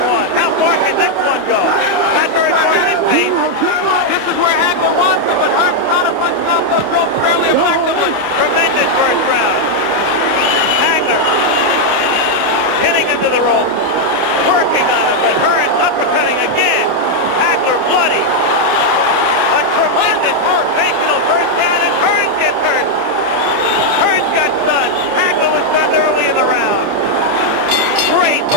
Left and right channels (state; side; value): late; left; 28 ms